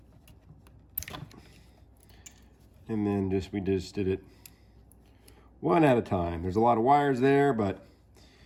And then we just did it one at a time. There's a lot of wires there, but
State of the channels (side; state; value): both; identical; correlation 1.00